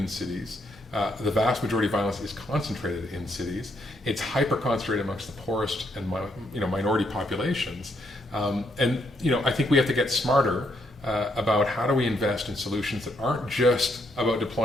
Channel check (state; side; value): normal; both; correlation 0.74